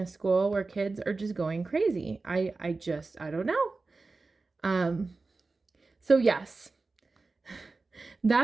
school where kids are just going crazy. I don't know. So yes,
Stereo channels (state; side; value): quieter; left; 3.8 dB